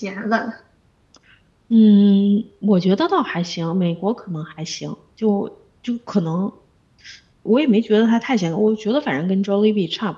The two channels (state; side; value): identical; both; correlation 1.00